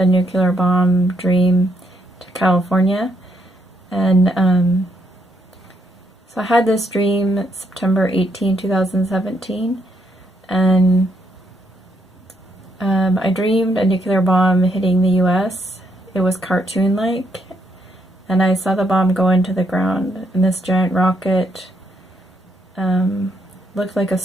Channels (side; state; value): both; normal; correlation 0.75